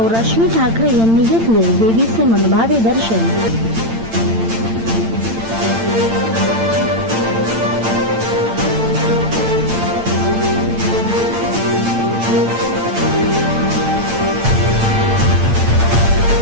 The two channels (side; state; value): left; late; 8.9 ms